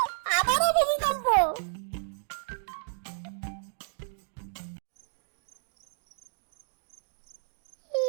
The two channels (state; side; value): silent; left; digital silence